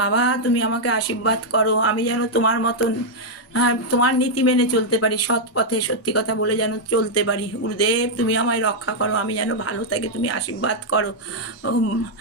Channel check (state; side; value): normal; both; correlation -0.03